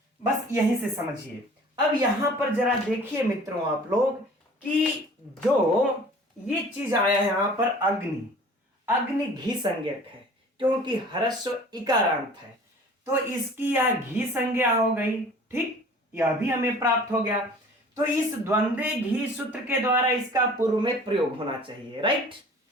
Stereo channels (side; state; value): both; normal; correlation 0.47